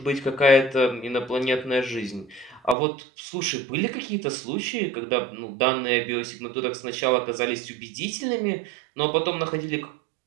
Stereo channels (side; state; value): left; drops out; at 2.8 s